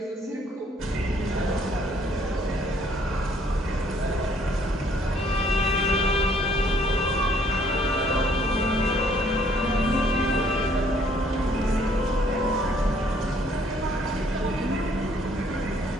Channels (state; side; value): normal; both; correlation 0.64